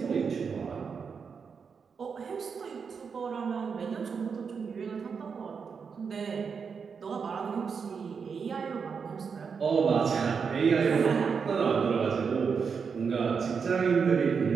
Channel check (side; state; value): left; quieter; 5.9 dB